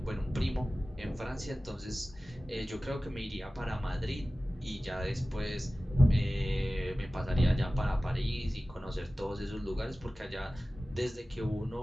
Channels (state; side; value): normal; both; correlation 0.96